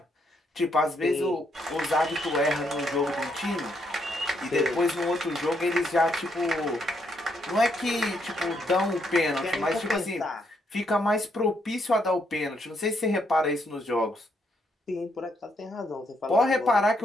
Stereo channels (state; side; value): normal; both; correlation 0.75